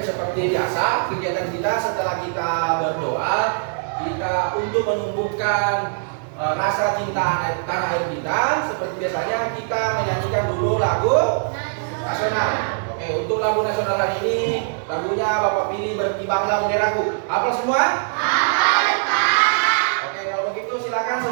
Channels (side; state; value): left; silent; digital silence